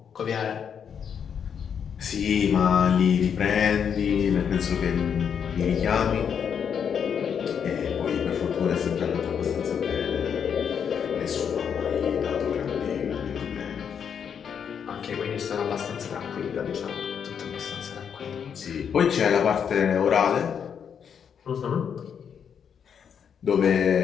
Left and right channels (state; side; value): quieter; right; 7.6 dB